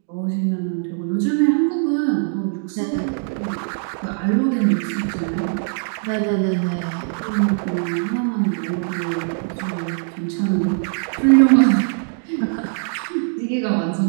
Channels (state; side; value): silent; left; 65 dB below the other